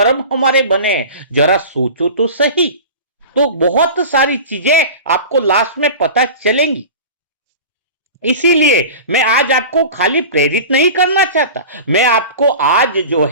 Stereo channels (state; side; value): inverted; both; correlation -0.34